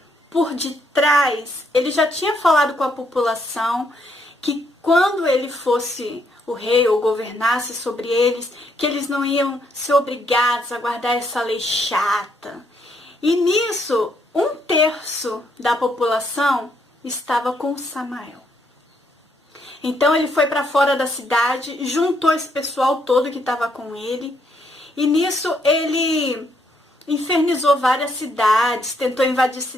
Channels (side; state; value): both; normal; correlation 0.73